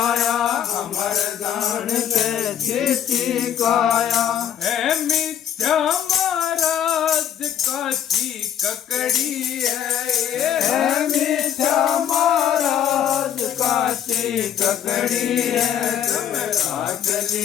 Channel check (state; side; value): quieter; right; 9.6 dB